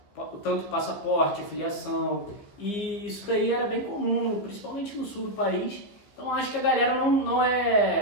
tanto passaporte, filiação, e isso daí era bem comum, principalmente no sul do país. Então acho que a galera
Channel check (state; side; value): late; right; 15 ms